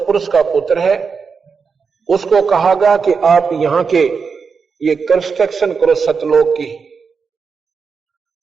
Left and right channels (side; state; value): left; quieter; 5.5 dB